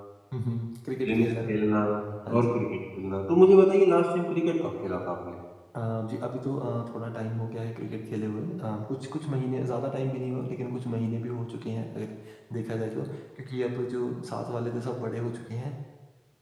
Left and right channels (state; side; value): identical; both; correlation 1.00